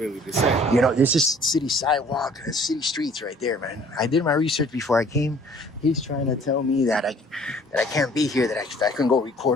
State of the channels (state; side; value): normal; both; correlation 0.55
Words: to say. You know, this is city sidewalk, city streets right there, man. I did my research before I came. He's trying to tell me that I can't be here, that I can go